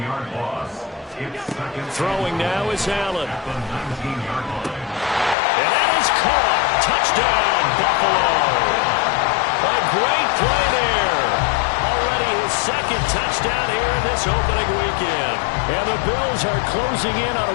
loss. Throwing now is Allen. At the 19-yard line. And that is caught. Touchdown, Buffalo. A great play there. Already his second touchdown here in this opening weekend. And the Bills are closing in on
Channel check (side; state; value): right; drops out; at 5.4 s